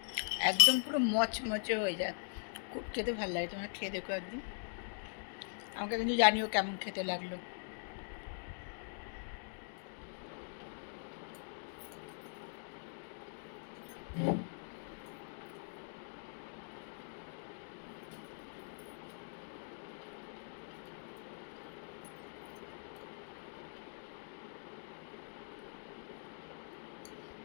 একদম পুরো মচমচে হয়ে যায়, খুব খেতে ভালো লাগে। তোমরা খেয়ে দেখো একদিন, আমাকে কিন্তু জানিও কেমন খেতে লাগলো।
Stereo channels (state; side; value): silent; right; digital silence